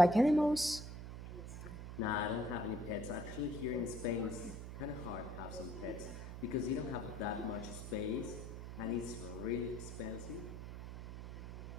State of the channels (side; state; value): right; noise; hum, 9 dB below the sound